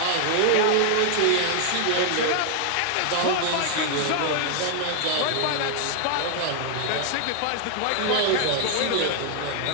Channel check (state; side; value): different; both; correlation 0.00